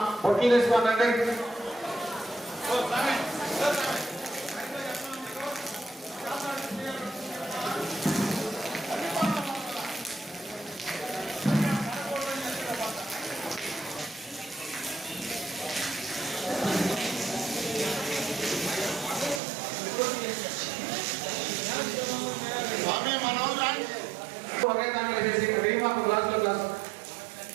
పొట్లు తీసుకోనండి. ఒకే దాంట్లో వేసేసి రీమాకు గ్లాసులో గ్లాస్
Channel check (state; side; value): drops out; left; at 19.4 s